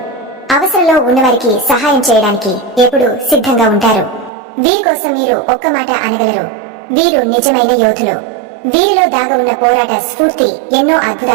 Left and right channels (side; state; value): left; drops out; at 4.3 s